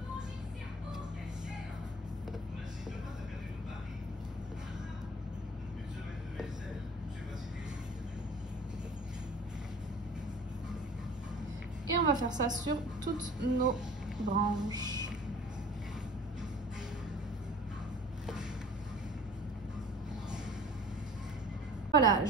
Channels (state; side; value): normal; both; correlation 0.46